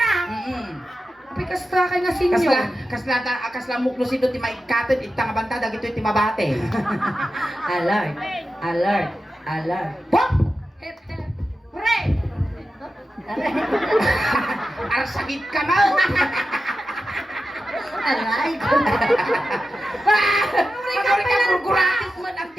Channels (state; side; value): normal; both; correlation 0.92